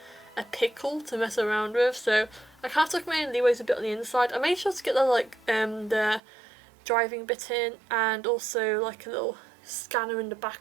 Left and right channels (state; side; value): drops out; left; at 6.2 s